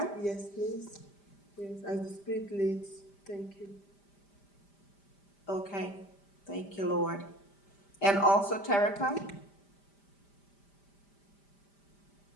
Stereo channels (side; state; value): right; late; 5.0 ms